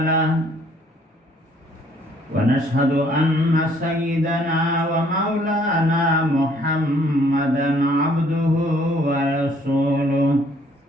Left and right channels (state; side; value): normal; both; correlation 0.62